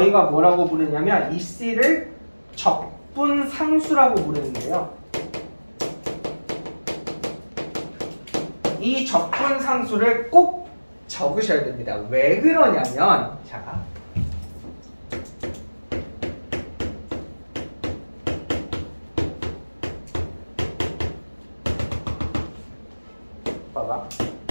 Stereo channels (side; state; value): both; inverted; correlation -1.00